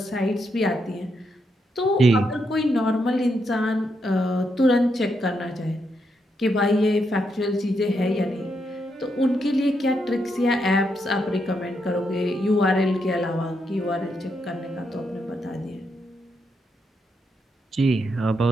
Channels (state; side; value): normal; both; correlation 0.80